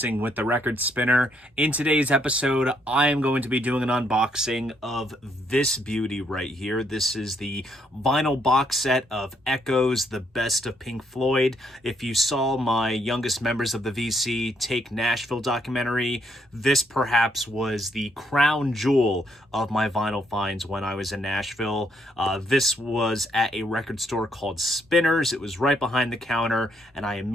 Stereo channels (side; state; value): both; normal; correlation 0.73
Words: with the Record Spinner. In today's episode, I am going to be doing an unboxing of this beauty right here. This is the vinyl box set of Echoes, the best of Pink Floyd. If you saw my youngest members of the VC Take Nashville documentary, this perhaps was the crown jewel of my vinyl finds when I was in Nashville. This was at a record store called Spinners. It was right behind the counter, and I